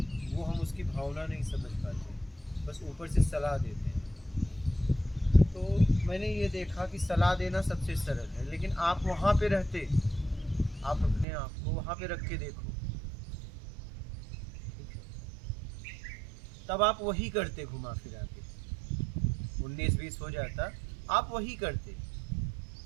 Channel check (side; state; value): left; drops out; at 11.2 s